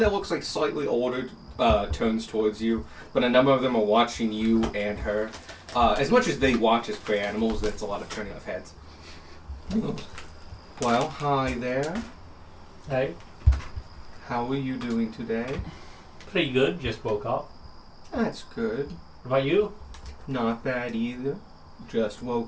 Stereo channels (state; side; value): identical; both; correlation 1.00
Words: looks like slightly older turns towards you, but a number of them are watching you and her. As much as they watch as prey animals, that's a lot of turning off heads. Well, hi there. Hey, How are you doing today? pretty good. Just woke up. That's good. What about you? Not bad either. Just